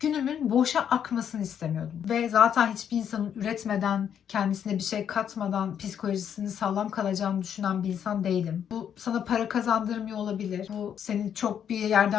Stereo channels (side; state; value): right; quieter; 8.7 dB